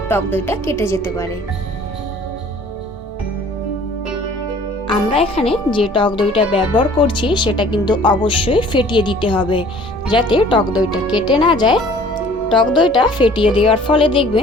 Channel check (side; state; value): both; normal; correlation 0.52